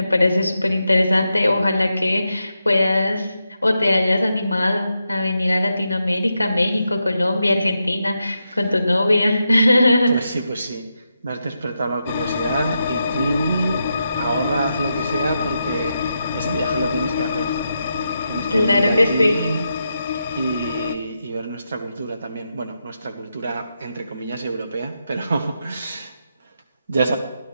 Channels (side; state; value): both; inverted; correlation -0.86